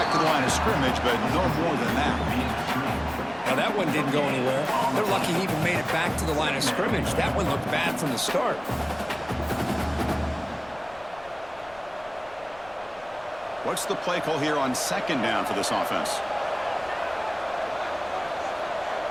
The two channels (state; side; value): noise; left; rumble, 25 dB below the sound